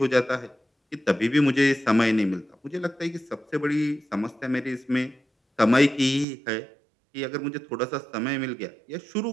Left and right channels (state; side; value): drops out; left; at 6.2 s